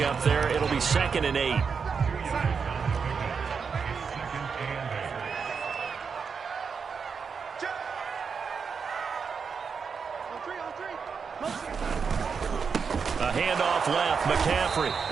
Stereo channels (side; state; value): left; quieter; 5.8 dB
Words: there. It'll be 2nd and 8. A handoff left, McCaffrey,